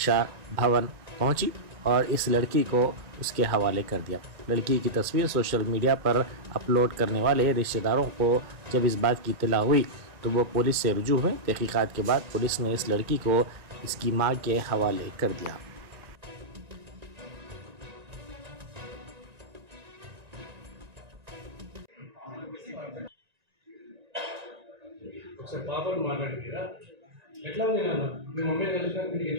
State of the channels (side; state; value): left; late; 2.4 ms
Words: भवन पहुंची और इस लड़की को उसके हवाले कर दिया। लड़की की तस्वीर सोशल मीडिया पर अपलोड करने वाले रिश्तेदारों को जब इस बात की इत्तला हुई तो वो पुलिस से रुजू हुए। तहकीकात के बाद पुलिस ने इस लड़की को इसकी मां के हवाले कर दिया। ఒకసారి పాపను మాట్లాడిరా ఎట్లా ఉంది నాన్న మీ మమ్మీని కలిసినాక మీకు